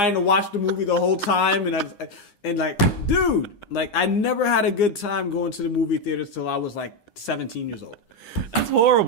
to watch the movie the whole time, dude, I never had a good time going to the movie theater till I was 17 years old. That's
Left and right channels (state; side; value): late; right; 9.7 ms